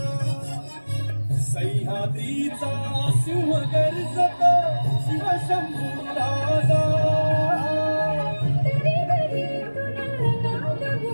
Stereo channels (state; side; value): inverted; both; correlation -1.00